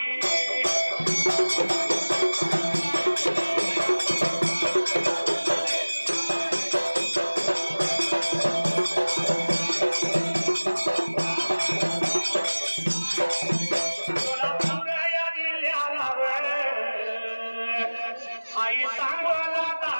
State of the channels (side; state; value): both; inverted; correlation -1.00